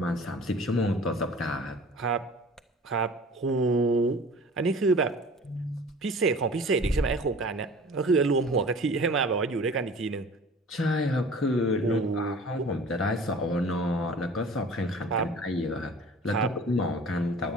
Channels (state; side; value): normal; both; correlation 0.44